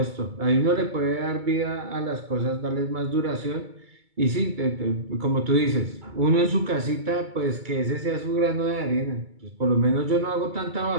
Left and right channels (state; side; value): late; left; 2.3 ms